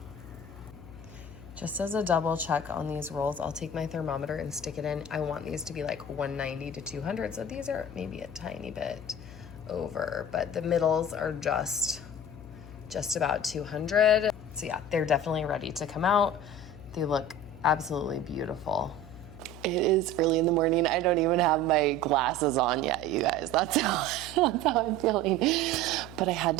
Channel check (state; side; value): noise; left; hum, 16 dB below the sound